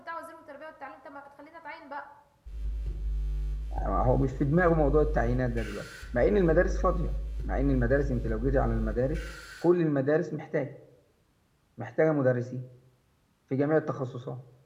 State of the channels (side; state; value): both; identical; correlation 1.00